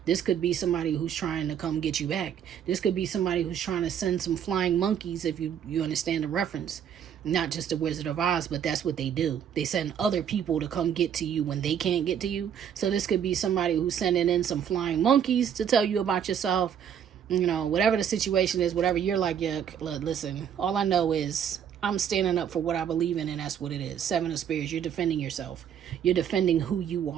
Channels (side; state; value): left; quieter; 8.7 dB